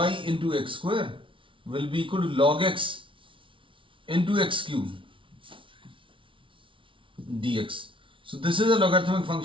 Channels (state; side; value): late; left; 0.25 ms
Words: into x square will be equal to log x into x cube dx. So this is a logarithmic